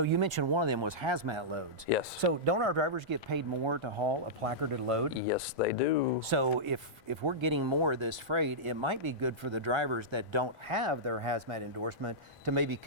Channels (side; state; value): both; normal; correlation -0.14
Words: you mentioned one of them was hazmat loads. Yes. So don't our drivers get paid more to haul a placarded load? Yes, they do. So if we're getting more of this freight, it might be good for the drivers that don't have their hazmat endorsement to maybe